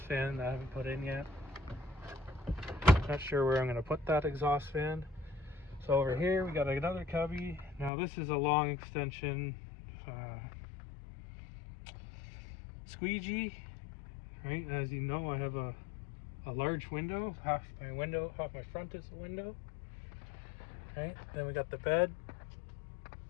fan that I haven't put in yet. Not sure where I'm going to put that exhaust fan. So over here we got another cubby. Now this is a long extension squeegee, right? As you know, I have a large window. Half my front is a window, right? Then we got the bed.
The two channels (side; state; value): right; drops out; at 7.9 s